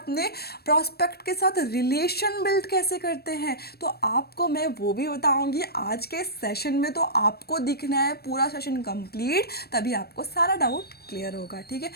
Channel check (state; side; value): late; right; 0.46 ms